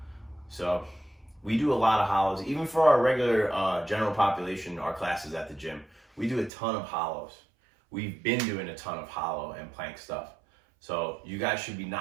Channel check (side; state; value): left; drops out; at 6.5 s